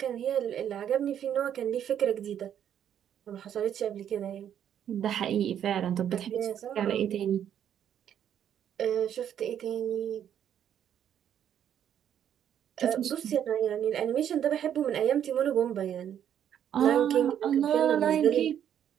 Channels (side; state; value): left; quieter; 9.6 dB